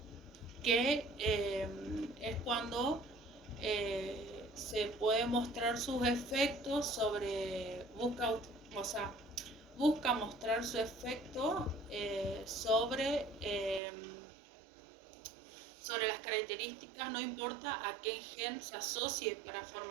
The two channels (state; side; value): drops out; left; at 13.8 s